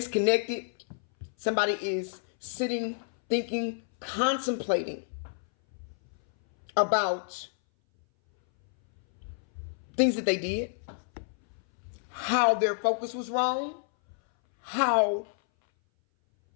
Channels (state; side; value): silent; right; 58 dB below the other